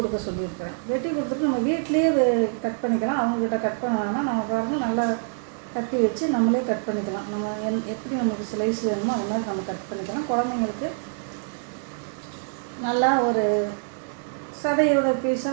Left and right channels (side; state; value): left; silent; digital silence